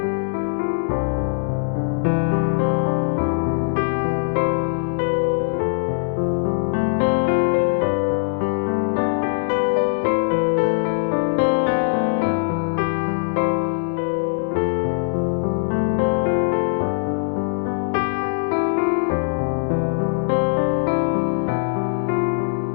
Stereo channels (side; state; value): right; silent; 65 dB below the other